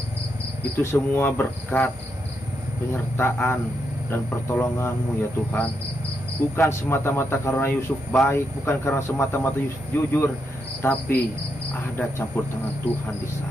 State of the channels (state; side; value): normal; both; correlation 0.82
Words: Itu semua berkat penyertaan dan pertolongan-Mu ya Tuhan. Bukan semata-mata karena Yusuf baik, bukan karena semata-mata Yusuf jujur, tapi ada campur tangan Tuhan di